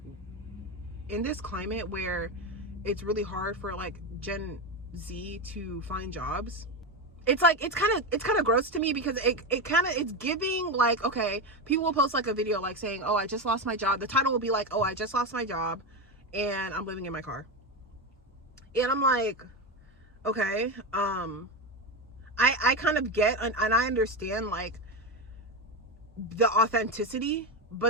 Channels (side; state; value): both; normal; correlation 0.15